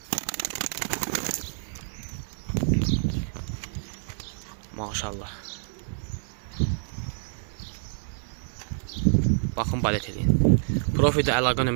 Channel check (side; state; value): left; silent; digital silence